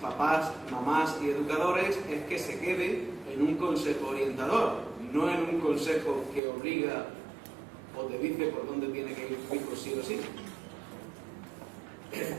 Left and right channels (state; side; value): drops out; left; at 6.4 s